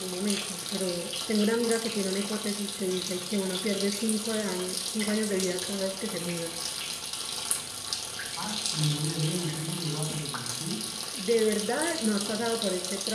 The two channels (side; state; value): both; identical; correlation 1.00